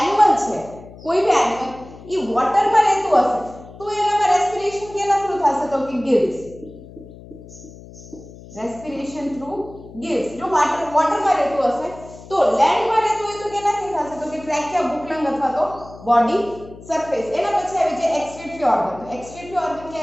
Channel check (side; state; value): left; noise; hum, 18 dB below the sound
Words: છે, કોઈ બી એનિમલ એ વોટરમાં રહેતું હશે તો એનામાં રેસ્પિરેશન કેના થ્રુ થશે તો કે ગિલ્સ. Respiration through ગિલ્સ. જો વોટરમાં રહેતું હશે તો લેન્ડમાં રહેતું હોય તો કેનાથી થશે તો કે ટ્રેકિયા, બુકલંગ અથવા તો બોડી સરફેસ. એના પછી આવી જાય એક્સક્રીટરી ઓર્ગન. તો એક્સક્રીટરી ઓર્ગન કે